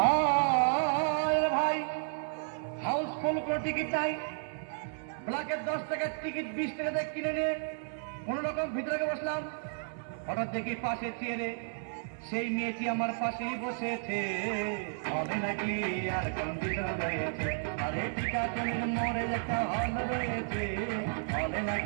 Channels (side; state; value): left; silent; 56 dB below the other